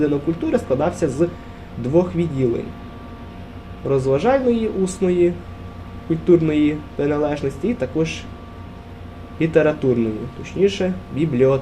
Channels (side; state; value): both; identical; correlation 1.00